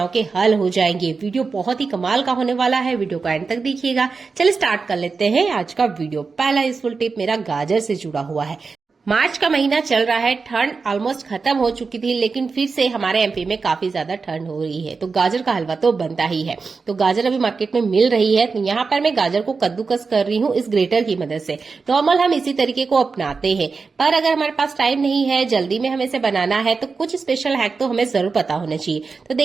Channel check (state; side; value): quieter; left; 4.7 dB